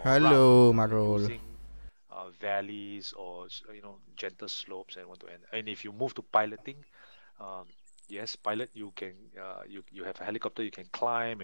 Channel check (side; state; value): both; inverted; correlation -1.00